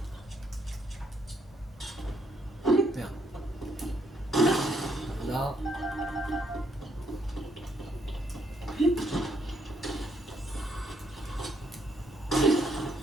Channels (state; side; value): normal; both; correlation 0.72